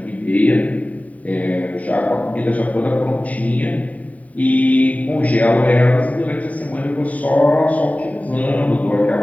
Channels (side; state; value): right; late; 0.070 ms